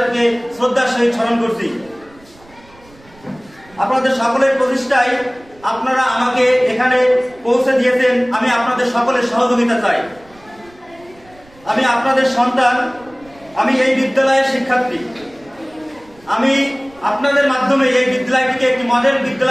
শ্রদ্ধার সহিত স্মরণ করছি। আপনাদের সকলের প্রচেষ্টায় আপনারা আমাকে এখানে পৌঁছে দিয়েছেন, আমি আপনাদের সকলের সহযোগিতা চাই। আমি আপনাদের সন্তান, আমি এই বিদ্যালয়ের শিক্ষার্থী। আমি আপনাদের মাধ্যমে এই বিদ্যালয়টিকে একটি মডেল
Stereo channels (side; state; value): right; noise; rumble, 27 dB below the sound